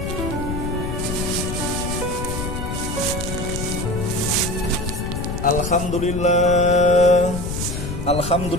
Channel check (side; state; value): left; noise; rumble, 5 dB below the sound